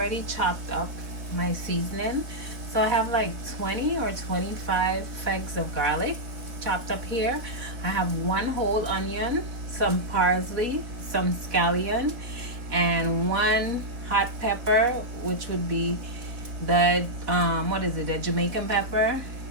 chopped up my seasoning. So I have like 20 or 25 fags of garlic chopped up here. I have one whole onion, some parsley, some scallion, and one hot pepper, which would be the what is it, the Jamaican pepper.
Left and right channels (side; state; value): left; late; 4.1 ms